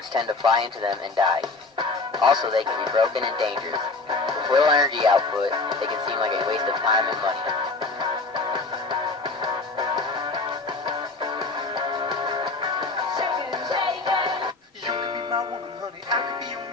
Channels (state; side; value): quieter; right; 3.6 dB